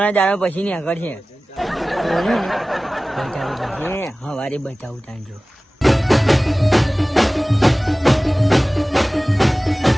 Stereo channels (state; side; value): normal; both; correlation 0.97